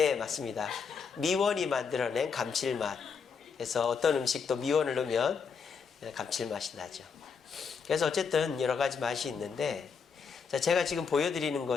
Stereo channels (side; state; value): right; quieter; 5.9 dB